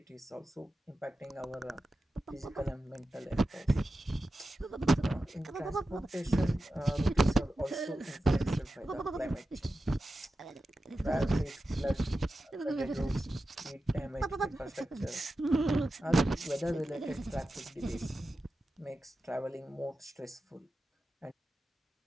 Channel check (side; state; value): both; normal; correlation 0.92